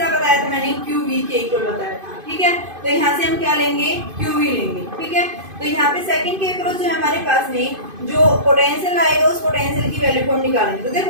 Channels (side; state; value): left; late; 2.5 ms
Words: बताया था मैंने QV के इक्वल बताया था। ठीक है, तो यहाँ से हम क्या लेंगे, QV लेंगे। ठीक है, तो यहाँ पे सेकंड के अक्रॉस जो है हमारे पास में जो पोटेंशियल आएगा उस पोटेंशियल की वैल्यू को हम निकालेंगे। तो